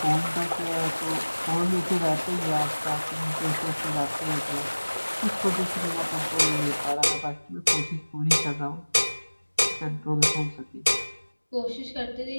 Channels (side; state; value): both; inverted; correlation -1.00